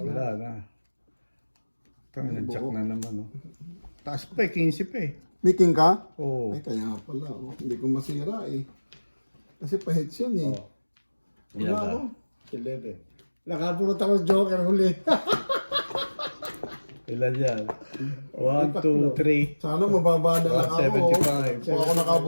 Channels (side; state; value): both; inverted; correlation -1.00